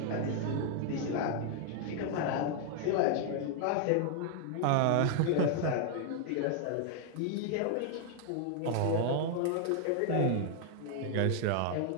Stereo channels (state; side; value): different; both; correlation 0.00